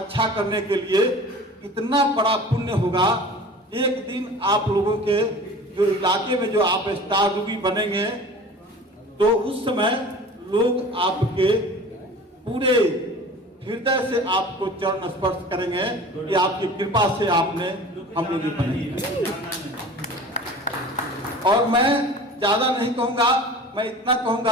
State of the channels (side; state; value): both; normal; correlation 0.40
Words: करने के लिए इतना बड़ा पुण्य होगा। एक दिन आप लोगों के जो इलाके में जो आप स्टार रूबी बनेंगे, तो उस समय लोग आपके पूरे हृदय से आपको चरण स्पर्श करेंगे कि आपकी कृपा से आपने हम लोग बने। और मैं ज्यादा नहीं कहूंगा, मैं इतना